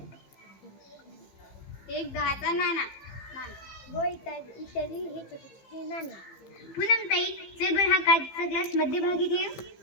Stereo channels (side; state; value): right; late; 15 ms